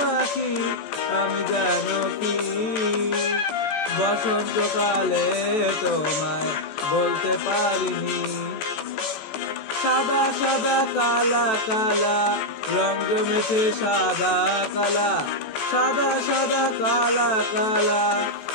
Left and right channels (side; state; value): right; late; 14 ms